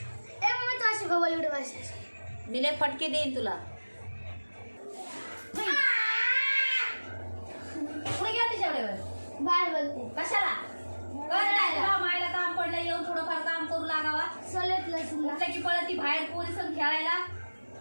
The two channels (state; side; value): inverted; both; correlation -1.00